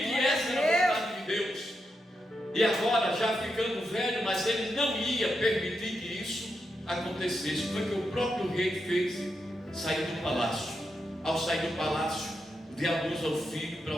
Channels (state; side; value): normal; both; correlation 0.85